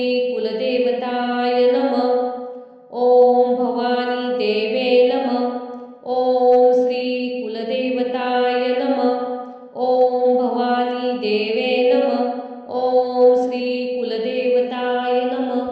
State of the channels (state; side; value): identical; both; correlation 1.00